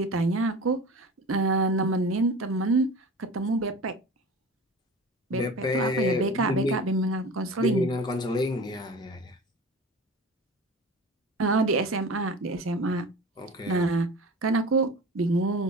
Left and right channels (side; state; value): both; normal; correlation 0.35